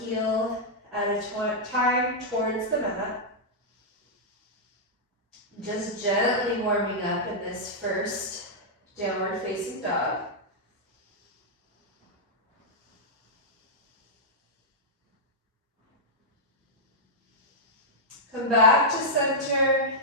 heel at a time towards the mat. Just gently warming up in this first downward facing dog. Come back to center,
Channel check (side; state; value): both; normal; correlation -0.08